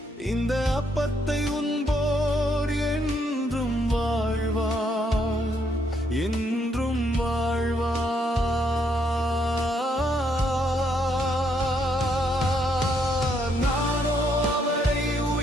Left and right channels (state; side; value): normal; both; correlation 0.73